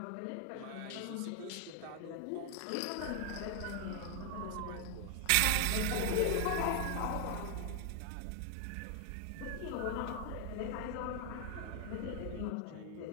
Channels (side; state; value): both; different; correlation 0.00